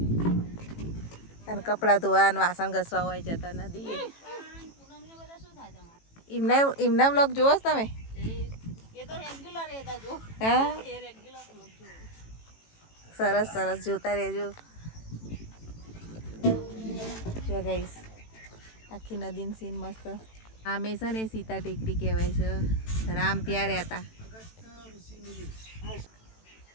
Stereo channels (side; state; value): right; late; 18 ms